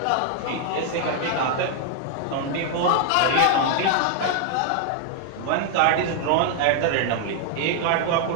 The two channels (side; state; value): both; different; correlation 0.00